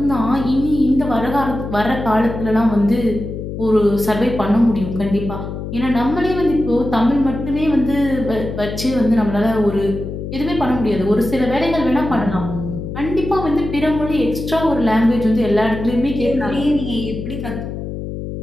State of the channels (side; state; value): left; noise; hum, 7 dB below the sound